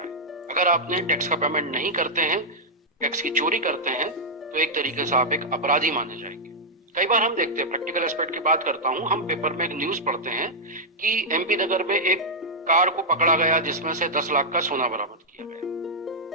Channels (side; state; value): both; normal; correlation -0.06